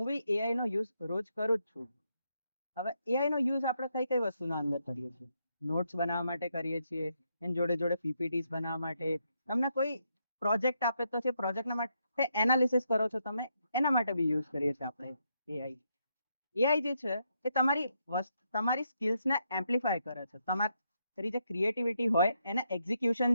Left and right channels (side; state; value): both; inverted; correlation -0.79